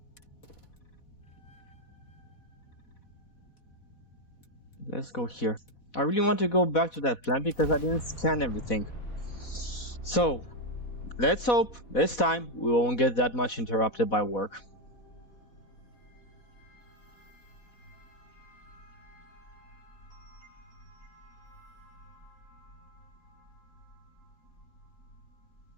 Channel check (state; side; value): late; right; 4.1 ms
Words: let's go here. I really want to go back to that plant because I didn't scan everything. So let's hope this time we won't get that much interrupted by work.